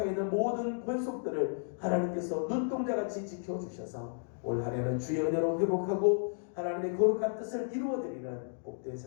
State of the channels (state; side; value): silent; right; digital silence